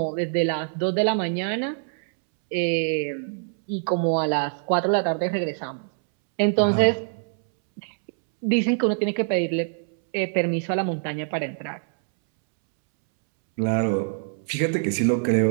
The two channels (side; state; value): left; silent; 62 dB below the other